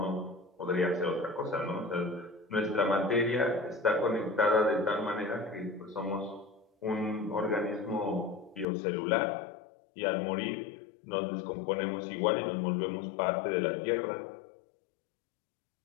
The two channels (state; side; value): drops out; right; at 8.7 s